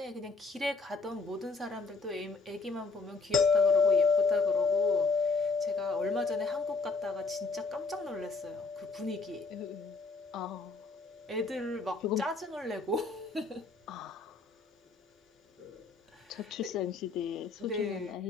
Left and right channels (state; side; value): quieter; right; 4.0 dB